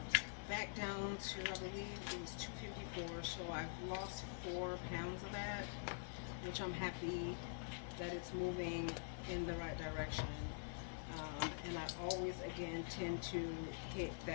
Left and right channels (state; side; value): silent; right; digital silence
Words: back down to, I believe it was 254, so I've lost 4 pounds of that, which I'm happy that it's moving in the right direction. And I always, again, tend to hit